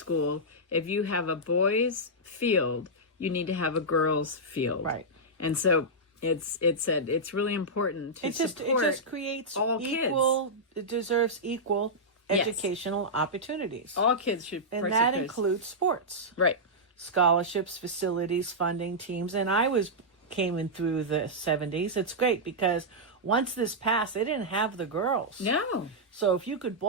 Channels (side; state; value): both; normal; correlation -0.10